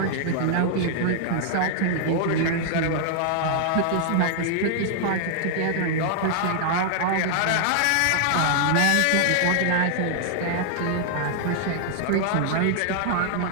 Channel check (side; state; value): both; different; correlation -0.01